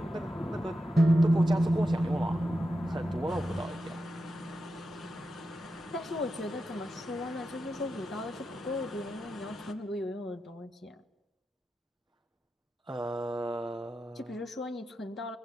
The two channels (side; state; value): both; normal; correlation 0.89